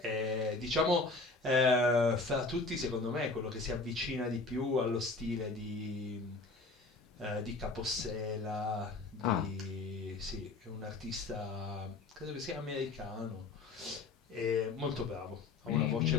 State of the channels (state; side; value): quieter; right; 3.6 dB